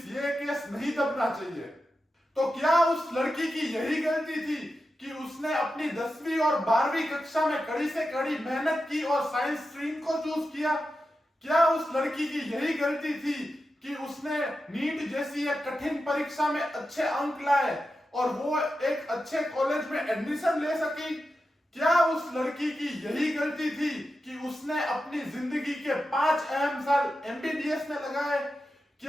ये केस नहीं दबना चाहिए। तो क्या उस लड़की की यही गलती थी कि उसने अपनी 10वीं और 12वीं कक्षा में कड़ी से कड़ी मेहनत की और साइंस स्ट्रीम को चूज किया? क्या उस लड़की की यही गलती थी कि उसने नीट जैसी एक कठिन परीक्षा में अच्छे अंक लाए और वो एक अच्छे कॉलेज में एडमिशन ले सकी? क्या उस लड़की की यही गलती थी कि उसने अपनी जिंदगी के 5 अहम साल एमबीबीएस में लगाए?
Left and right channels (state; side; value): normal; both; correlation 0.91